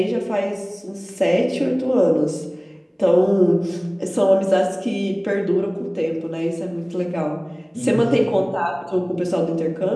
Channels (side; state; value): both; identical; correlation 1.00